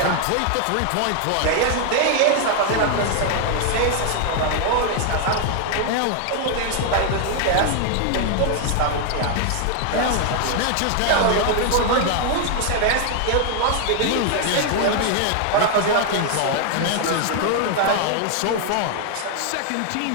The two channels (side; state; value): both; different; correlation 0.00